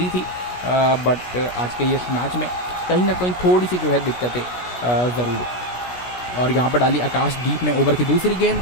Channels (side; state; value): right; late; 16 ms